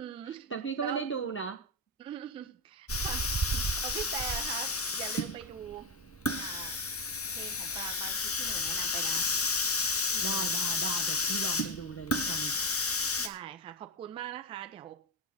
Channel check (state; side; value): normal; both; correlation 0.08